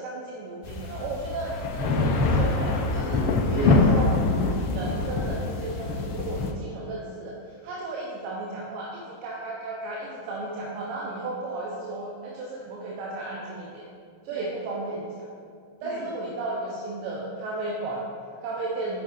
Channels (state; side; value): late; left; 22 ms